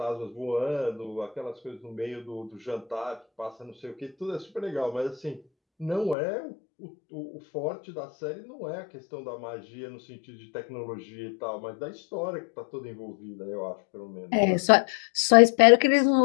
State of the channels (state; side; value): drops out; right; at 6.2 s